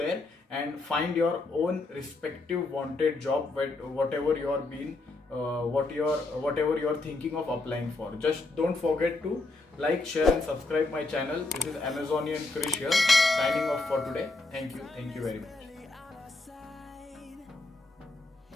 and find your own respective wanted job, whatever you are being whatever you are thinking of applying for. Just don't forget to like, share and subscribe my channel. This is Amazonian Krish here, signing off for today. Thank you very much.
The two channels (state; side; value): quieter; right; 3.3 dB